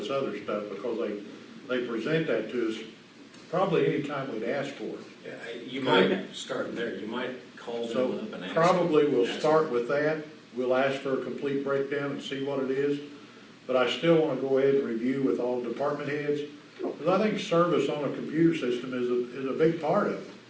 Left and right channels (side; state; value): both; identical; correlation 1.00